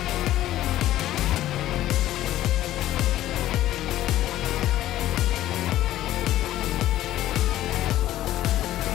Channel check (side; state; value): right; quieter; 14.0 dB